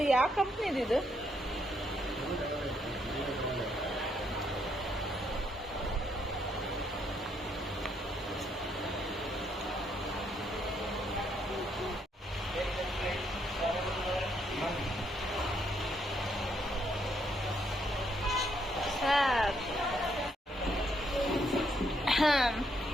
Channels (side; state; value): both; normal; correlation 0.74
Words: ಯಾವ ಕಂಪ್ನಿದು ಇದು?